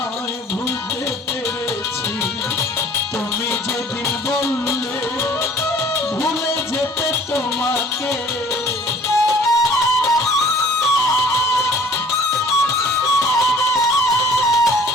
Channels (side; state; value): both; normal; correlation 0.52